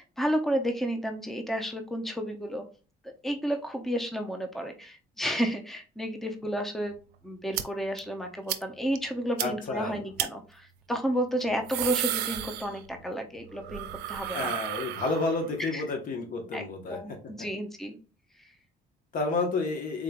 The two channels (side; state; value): both; normal; correlation 0.56